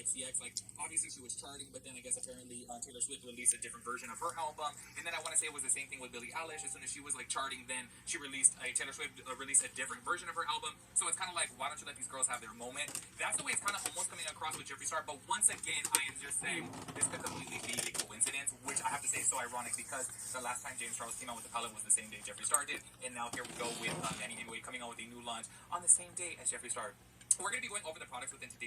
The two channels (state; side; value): identical; both; correlation 1.00